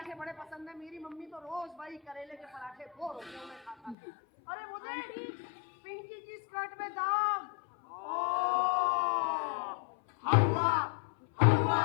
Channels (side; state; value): right; drops out; at 4.0 s